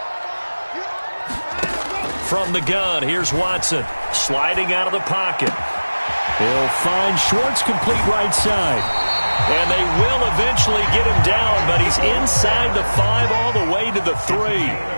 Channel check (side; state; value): both; inverted; correlation -1.00